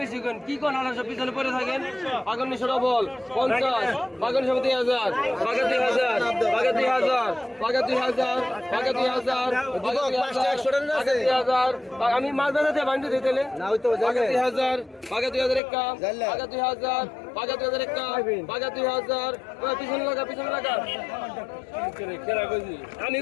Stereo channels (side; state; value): right; drops out; at 15.6 s